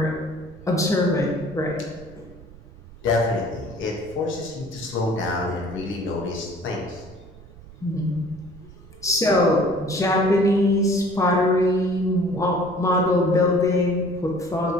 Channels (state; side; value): noise; right; rumble, 20 dB below the sound